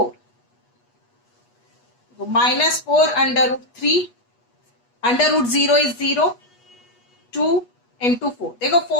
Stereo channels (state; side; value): late; right; 8.3 ms